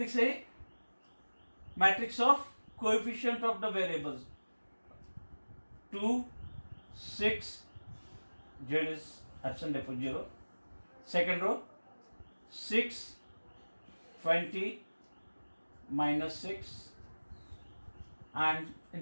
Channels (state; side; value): inverted; both; correlation -1.00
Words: A? Matrix of coefficient of the variables. 2, 6, Z is absent, therefore 0. Second row, 6, 20, minus 6. And